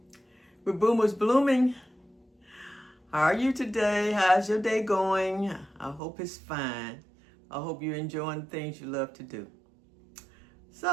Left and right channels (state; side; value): drops out; left; at 6.0 s